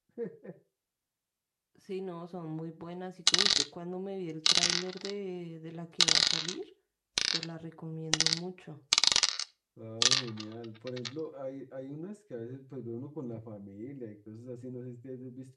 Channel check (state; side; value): identical; both; correlation 1.00